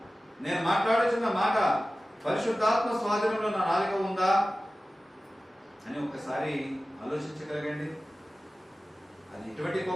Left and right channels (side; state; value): both; normal; correlation 0.96